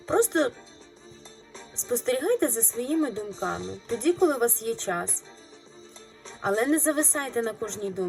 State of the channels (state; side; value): identical; both; correlation 1.00